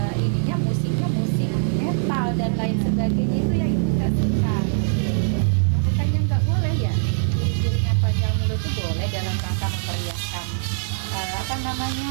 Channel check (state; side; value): silent; left; 61 dB below the other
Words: ininya musiknya musik metal dan lain sebagainya, itu yang kita suka. Bukannya nggak boleh ya, iring-iringan panjang mulut itu boleh dalam rangka memeriahkan